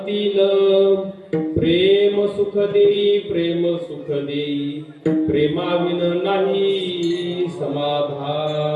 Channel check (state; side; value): identical; both; correlation 1.00